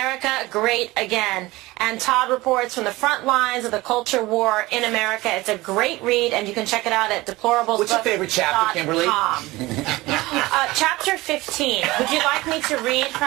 Great Again. And Todd reports from the front lines of the culture war in America. It's a great read, and you can check it out at deplorablesbook.com. What's your favorite chapter, Kimberly? Chapter 15. Would you like me to read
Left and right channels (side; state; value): left; quieter; 20.0 dB